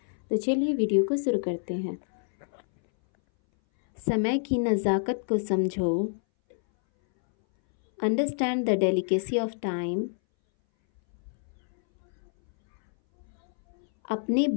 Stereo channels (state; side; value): silent; right; 60 dB below the other